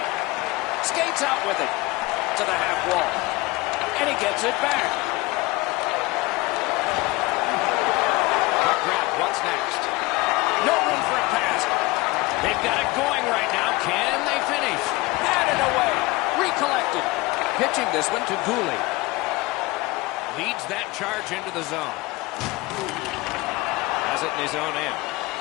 Skates out with it to the half wall. And he gets it back. Puck grab, what's next? No room for a pass. They've got it going right now. Can they finish? Batted away. Recollected. Pitching this one to Gooley. Leads that charge into the zone. Has it in his own end.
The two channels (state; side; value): quieter; right; 21.7 dB